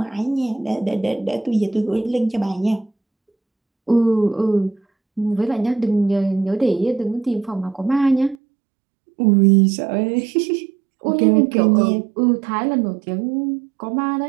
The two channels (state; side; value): drops out; left; at 8.3 s